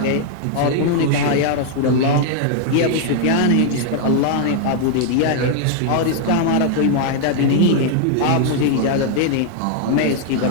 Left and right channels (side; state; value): both; different; correlation 0.00